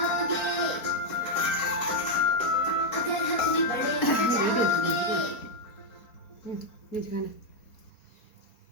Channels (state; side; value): late; right; 4.3 ms